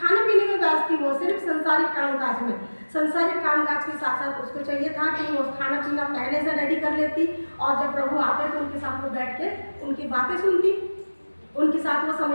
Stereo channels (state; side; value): inverted; both; correlation -1.00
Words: पीने में व्यस्त थी, वो सिर्फ संसारिक कामकाज में, संसारिक कामकाज के साथ साथ उसको चाहिए था कि वो खाना पीना पहले से रेडी कर लेती और जब प्रभु आते तो उनके साथ वो बैठ के उनकी बातें सुनती, उनके साथ वो